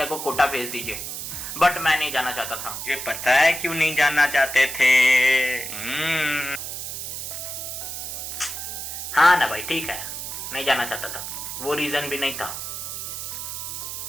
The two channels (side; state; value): right; noise; hiss, 6 dB below the sound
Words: को कोटा भेज दीजिए। बट मैं नहीं जाना चाहता था। मुझे पता है क्यों नहीं जाना चाहते थे। हाँ ना भाई, ठीक है, नहीं जाना चाहता था। वो रीजन भी नहीं था।